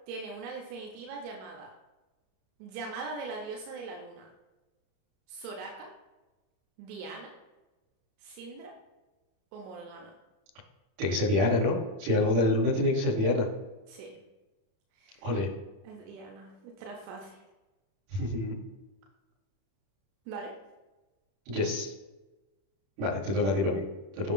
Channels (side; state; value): left; late; 31 ms